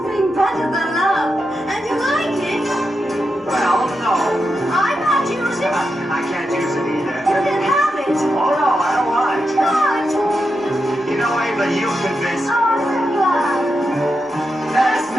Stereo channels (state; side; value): normal; both; correlation 0.87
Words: better than love, and you like it... Well, no. I might use it. I can't use it either. You can have it. Oh, no, I don't want it. What? You know, Ava, you convinced me. Oh, I'm glad. There's